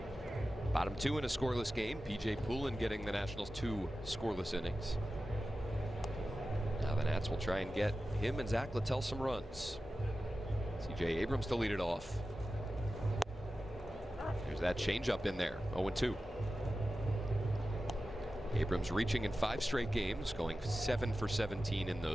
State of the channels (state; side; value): normal; both; correlation 0.94